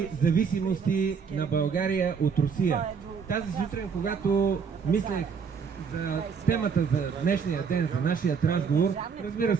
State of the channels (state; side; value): quieter; left; 6.1 dB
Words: зависимости на България от Русия. Тази сутрин, когато мислех за темата за днешния ден, за нашия разговор, разбира